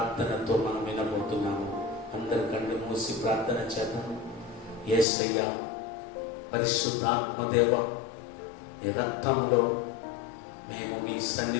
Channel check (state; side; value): drops out; right; at 5.1 s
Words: మనం వినబోతున్నాము. అందరు కళ్ళు మూసి ప్రార్థన చేద్దాం. యేసయ్య, పరిశుద్ధాత్మదేవ, ఈ రక్తంలో మేము మీ